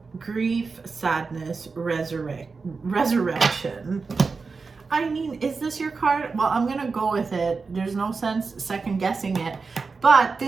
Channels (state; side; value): quieter; left; 4.5 dB